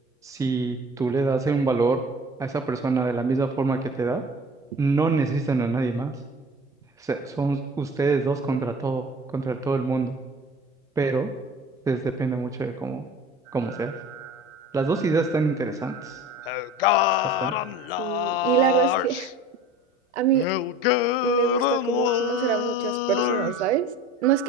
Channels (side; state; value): both; normal; correlation 0.41